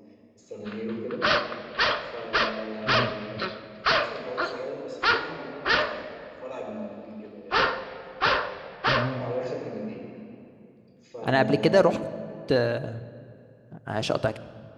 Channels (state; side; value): identical; both; correlation 1.00